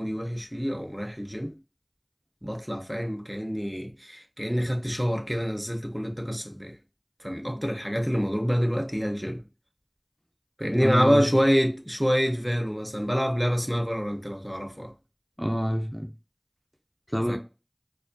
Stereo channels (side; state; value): both; identical; correlation 1.00